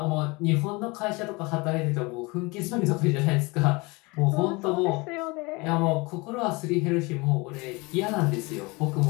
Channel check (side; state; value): right; quieter; 25.7 dB